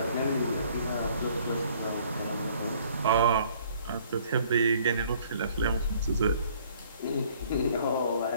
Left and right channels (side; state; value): both; inverted; correlation -0.58